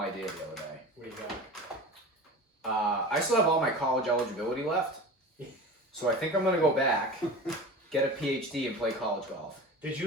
idea the other day. What do you got? I still have all my college eligibility left, so I think I'm gonna go back, get a PhD, and play college golf. Did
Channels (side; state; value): both; normal; correlation 0.34